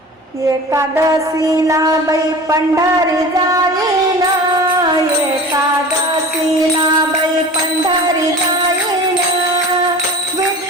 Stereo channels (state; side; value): normal; both; correlation 0.38